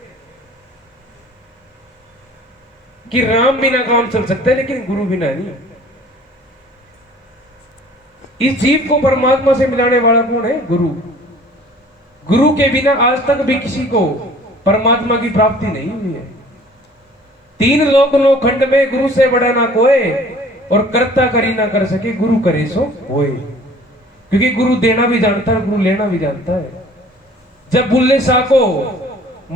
कि राम बिना काम चल सकता है लेकिन गुरु बिना नहीं। इस जीव को परमात्मा से मिलाने वाला कौन है? गुरु। गुरु के बिना आज तक भी किसी को परमात्मा की प्राप्ति नहीं हुई है। 3 लोक नो खंड में गुरु से बड़ा ना कोई, और करता करी ना कर सके गुरु करे सो होए। क्योंकि गुरु देना भी जानता है, गुरु लेना भी जानता है। जब बुल्ले शाह को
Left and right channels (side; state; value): both; normal; correlation 0.50